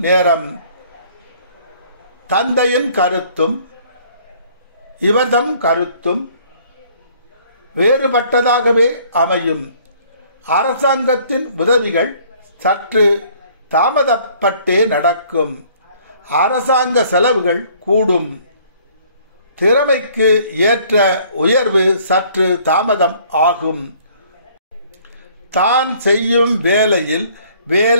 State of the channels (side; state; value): both; inverted; correlation -0.58